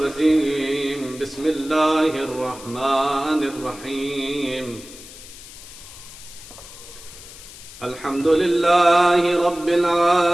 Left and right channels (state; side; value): noise; left; hiss, 17 dB below the sound